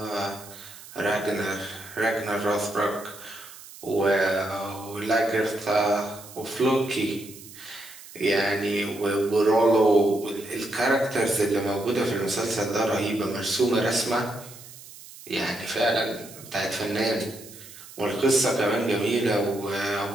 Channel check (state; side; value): noise; right; hiss, 17 dB below the sound